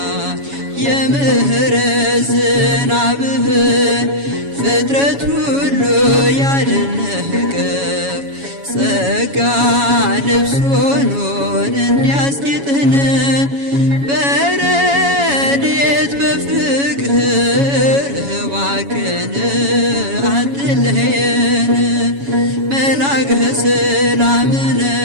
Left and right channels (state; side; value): late; left; 7.2 ms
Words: የምህረት ዝናብህን ፍጥረት ሁሉ ያደነቀ ጸጋ ልብስ ሆኖን እንዲያስጌጥህን በረድኤት በፍቅር እባክህን አትለየን። መልአከ ሰላምነ